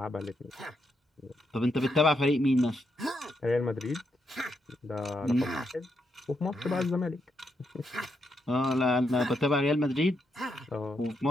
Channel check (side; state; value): both; normal; correlation 0.81